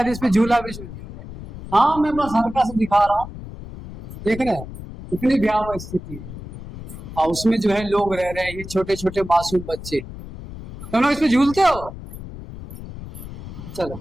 इस पे झूला भी झूल गया। हाँ मैं बस हल्का सा दिखा रहा हूँ, देख रहे हैं इतनी भयावह स्थिति है। और उसमें जो है लोग रह रहे हैं, ये छोटे छोटे मासूम बच्चे। तुम लोग इस पे झूलते हो? चलो,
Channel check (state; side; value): noise; left; rumble, 12 dB below the sound